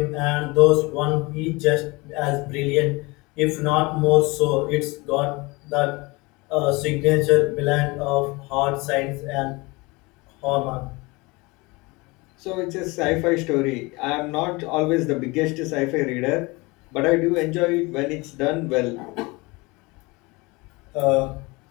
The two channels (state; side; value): quieter; right; 24.7 dB